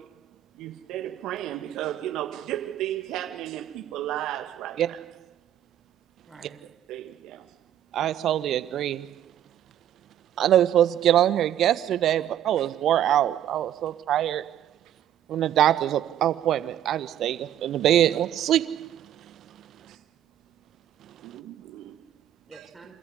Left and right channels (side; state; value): left; quieter; 11.1 dB